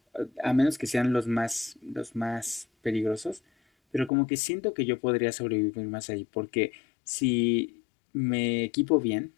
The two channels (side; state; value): right; drops out; at 4.1 s